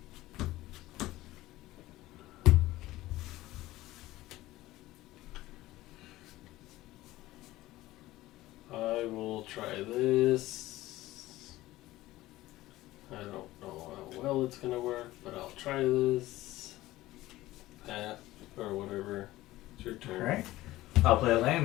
I will try this. I don't know how well it's gonna work, but I'll try this. Or whatever. It's your turn. Alright. I'll play a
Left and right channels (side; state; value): right; quieter; 17.0 dB